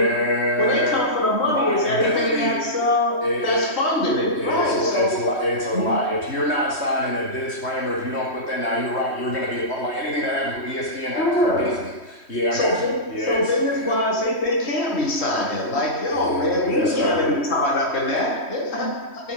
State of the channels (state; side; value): late; right; 3.1 ms